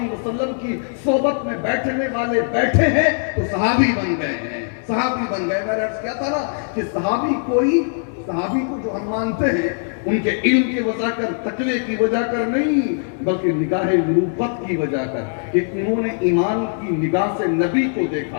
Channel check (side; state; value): right; silent; 65 dB below the other